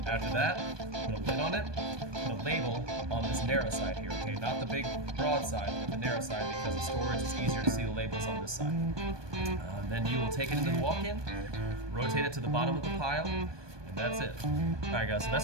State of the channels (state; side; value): late; left; 1.2 ms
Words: After that, put a lid on it. Put a label on this narrow side here. Okay, not the big broad side, but the narrow side, because the storage is easier to see the labels on this side. Then you will take it into the walk-in, rotate it to the bottom of the pile, and that's it. All right, guys. So